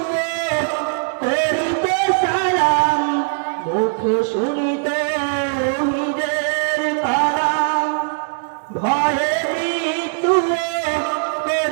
করিতে সালাম। মুখে শুনি তাওহীদের কালাম, ভয়ে মৃত্যু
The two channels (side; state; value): left; silent; 63 dB below the other